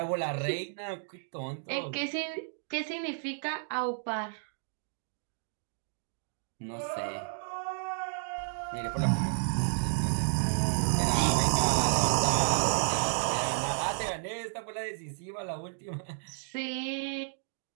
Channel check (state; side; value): silent; left; digital silence